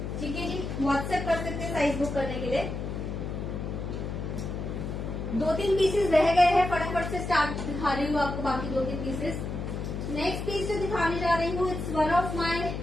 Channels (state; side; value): noise; left; hum, 5 dB below the sound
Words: ठीक है जी, व्हाट्सएप कर सकते हैं साइज बुक करने के लिए. 2-3 पीसेस रह गए हैं, फटाफट से स्टार्ट दिखा रही हूँ आपको बाकी 2-3 पीसेस. नेक्स्ट पीस जो दिखाने जा रही हूँ it's one of